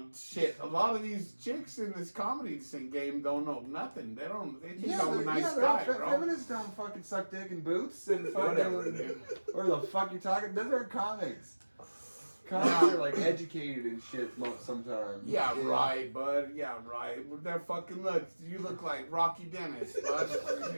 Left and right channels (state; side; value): inverted; both; correlation -1.00